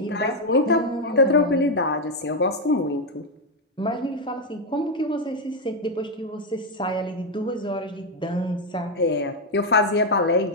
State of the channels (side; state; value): both; normal; correlation 0.03